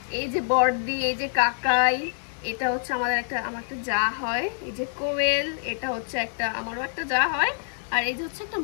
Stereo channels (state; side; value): silent; right; digital silence